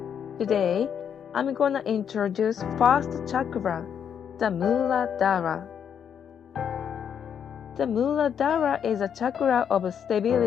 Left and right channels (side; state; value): right; quieter; 8.1 dB